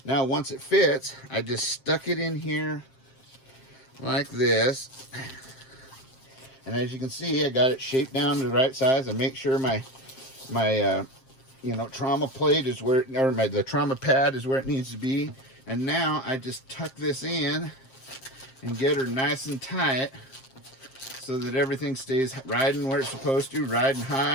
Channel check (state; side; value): late; right; 7.6 ms